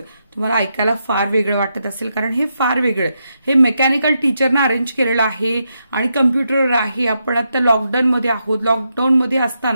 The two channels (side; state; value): both; inverted; correlation -0.83